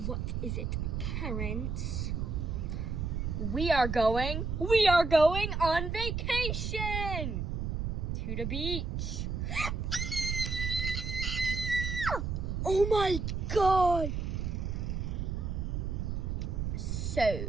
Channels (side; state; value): right; noise; rumble, 2 dB below the sound